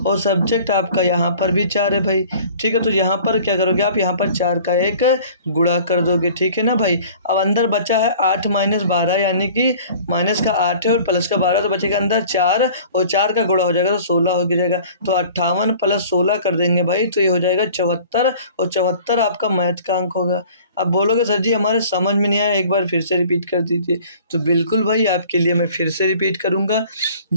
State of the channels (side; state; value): both; inverted; correlation -0.48